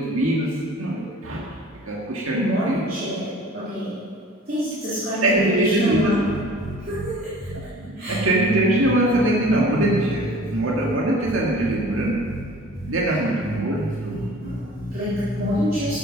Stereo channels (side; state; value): both; normal; correlation 0.46